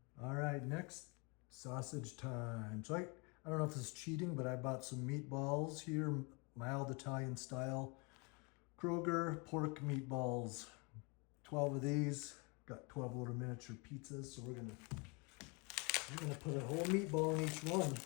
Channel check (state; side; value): quieter; right; 30.8 dB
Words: All right, next, sausage time. So I don't know if this is cheating, but I bought some meatballs here, mild Italian style. Kroger pork meatballs. 12 of these. Got 12 little miniature pizzas, so we're gonna put a whole meatball in each one.